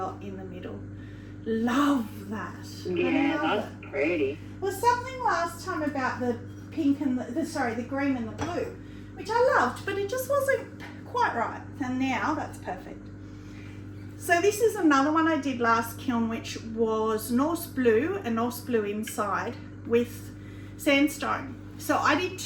in the middle. Love that. Yeah, that's pretty. Well, something last time about the pink and the green and the blue, which I loved, but it just wasn't quite right, and now that's perfect. So this is another one I did last kiln, which was Norse blue and Norse blue inside with sandstone. So I did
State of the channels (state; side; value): identical; both; correlation 1.00